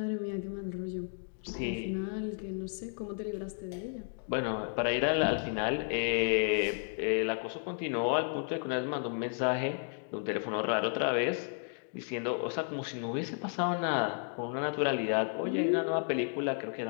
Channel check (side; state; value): right; silent; 56 dB below the other